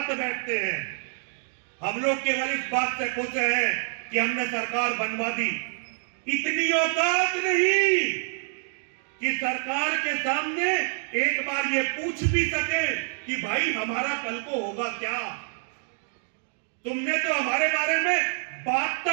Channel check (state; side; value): silent; left; digital silence